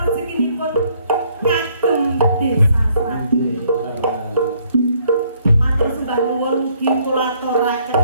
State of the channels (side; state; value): both; inverted; correlation -0.66